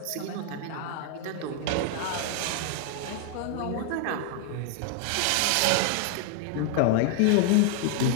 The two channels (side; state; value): both; different; correlation 0.00